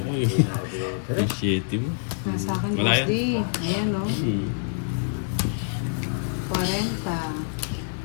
yun. Appreciate mo. Nasa akin, Wala Boss yan. D. Ayan, no? 40.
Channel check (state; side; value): silent; right; digital silence